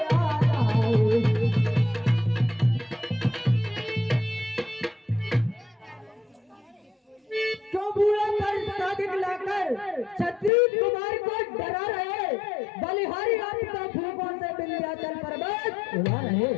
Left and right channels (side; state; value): right; drops out; at 10.5 s